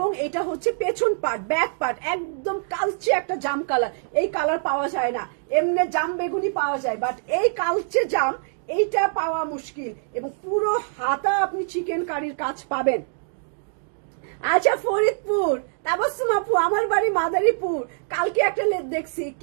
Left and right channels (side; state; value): left; silent; digital silence